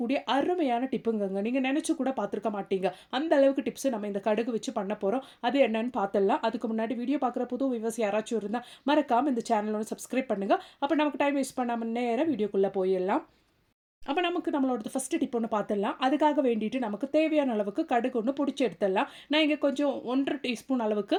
அருமையான டிப்புங்கங்க. நீங்க நினைச்சு கூட பார்த்துருக்க மாட்டீங்க. அந்த அளவுக்கு டிப்ஸ் நம்ம இந்த கடுகு வச்சு பண்ண போறோம். அது என்னன்னு பார்த்துடலாம். அதுக்கு முன்னாடி வீடியோ பார்க்குற புது வியூவர்ஸ் யாராச்சும் இருந்தா மறக்காம இந்த சேனலோட சப்ஸ்கிரைப் பண்ணுங்க. அப்போ நமக்கு டைம் வேஸ்ட் பண்ணாம நேரா வீடியோக்குள்ள போயிடலாம். அப்போ நமக்கு நம்மளோட ஃபஸ்ட்டு டிப் ஒன்று பார்த்துடலாம். அதுக்காக வேண்டிட்டு நமக்கு தேவையான அளவுக்கு கடுகு ஒன்று பொடிச்சு எடுத்துடலாம். நான் இங்கே கொஞ்சம் 1½ டீஸ்பூன் அளவுக்கு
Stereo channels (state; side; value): identical; both; correlation 1.00